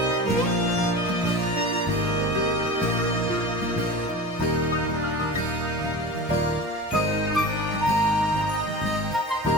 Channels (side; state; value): both; normal; correlation 0.33